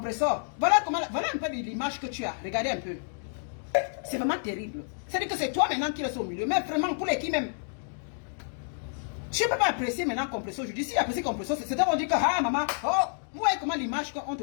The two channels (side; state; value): right; silent; digital silence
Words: Voilà un peu l'image que tu as. Regardez un peu. C'est vraiment terrible. C'est-à-dire que c'est toi maintenant qui restes au milieu. Mais vraiment, pour les qui même. Tu ne peux pas apprécier maintenant Compressor. Je dis, si apprécier Compressor, c'est à dire que, ah, maman, oh, vous voyez comment l'image qu'on